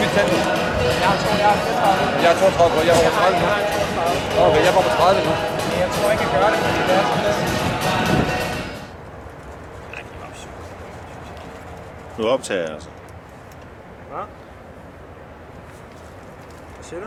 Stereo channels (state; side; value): identical; both; correlation 1.00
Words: mit tand. Jeg er 32, jeg var på 30 nu. Okay, jeg var på 30 nu. Jeg tror ikke, jeg gør det, fordi det er sådan lidt. Nu optager jeg altså. Hvad? Hvad siger du?